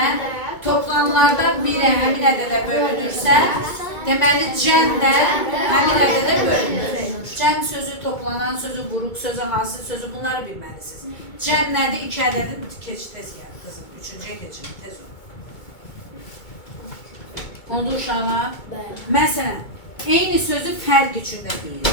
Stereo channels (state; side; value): late; right; 2.2 ms